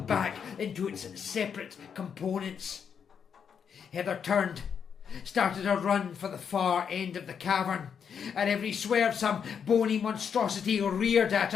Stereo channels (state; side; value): quieter; right; 7.2 dB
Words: back into its separate components. Heather turned, started a run for the far end of the cavern. At every swerve some bony monstrosity reared at